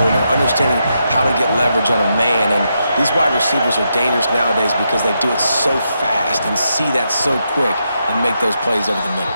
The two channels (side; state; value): both; inverted; correlation -0.83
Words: or understanding how to get leverage on a man. And these wide receivers are dangerous nowadays because they do it so fast and see that so quick and make those plays over the middle.